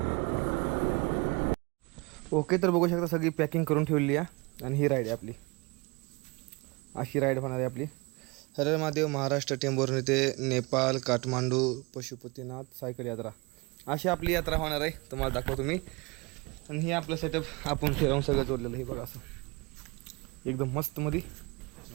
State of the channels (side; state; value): left; quieter; 27.4 dB